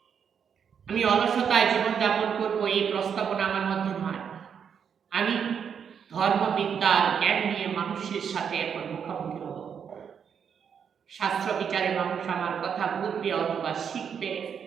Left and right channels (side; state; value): left; quieter; 7.4 dB